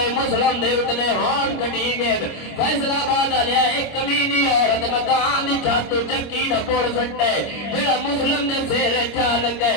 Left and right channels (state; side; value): late; right; 26 ms